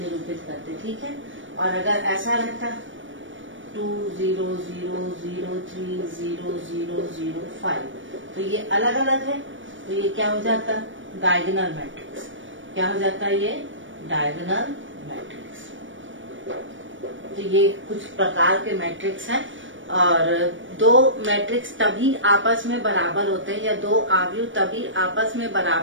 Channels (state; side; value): late; left; 0.56 ms